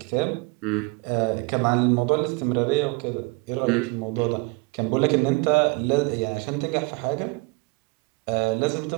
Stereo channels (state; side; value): quieter; left; 27.5 dB